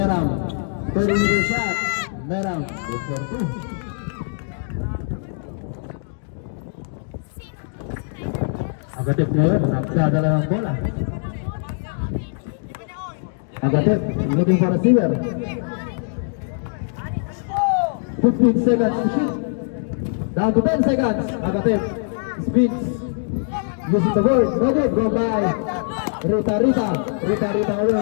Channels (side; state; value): right; silent; digital silence